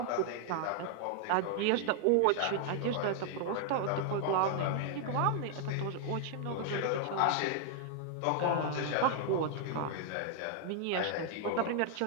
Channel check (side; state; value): both; different; correlation 0.00